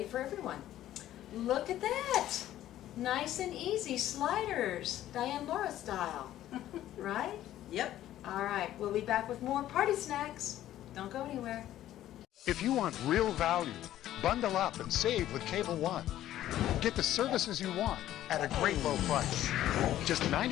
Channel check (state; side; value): quieter; right; 13.0 dB